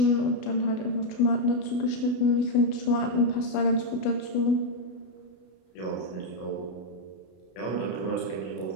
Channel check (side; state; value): right; late; 32 ms